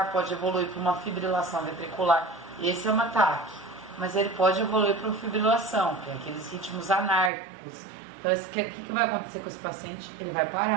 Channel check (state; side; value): drops out; left; at 7.3 s